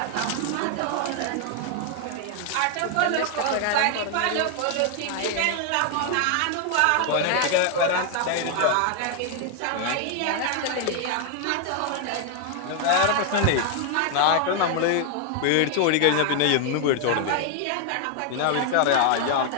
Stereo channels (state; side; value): different; both; correlation 0.00